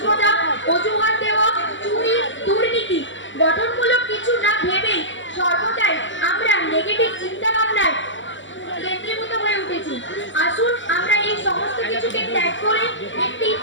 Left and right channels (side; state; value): right; late; 0.55 ms